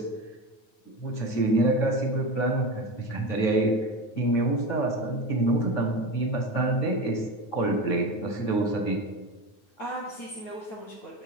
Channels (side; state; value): right; late; 9.4 ms